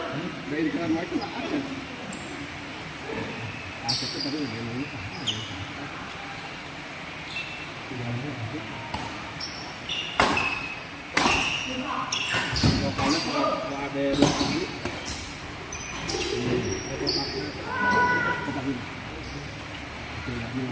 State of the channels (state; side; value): identical; both; correlation 1.00